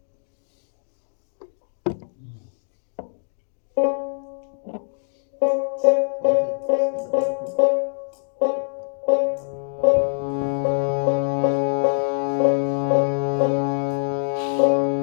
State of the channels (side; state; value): right; silent; digital silence